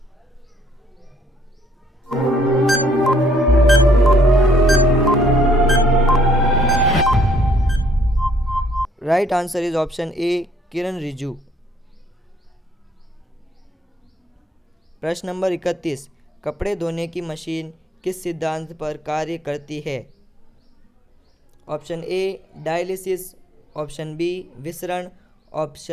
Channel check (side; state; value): both; normal; correlation 0.65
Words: Right answer is option A Kiran Rijiju. प्रश्न नंबर 31, कपड़े धोने की मशीन किस सिद्धांत पर कार्य करती है? Option A dialysis, option B विसरण,